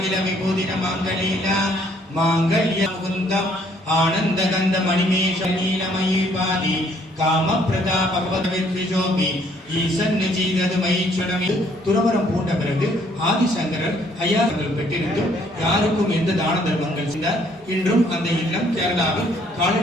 विभूतिनमाङ्गलीला माङ्गल्यमुकुन्दम् आनन्दगन्धमणिमेष नीलमयी पादि காமப்பிரதா பகவத்வித்விஜோபி ஈசன் நிஜீதது மயிச்சுடமி துறவரம் பூண்ட பிறகு ஆதிசங்கரர் ஐயார்கள் பெற்றிருந்தும் யாருக்கும் எந்த தான தர்மங்கள் செய்தார். இன்றும் அந்த இல்லம் கேரளாவில்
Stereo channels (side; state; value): both; normal; correlation 0.64